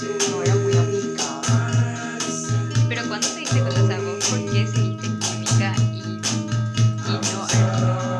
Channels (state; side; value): identical; both; correlation 1.00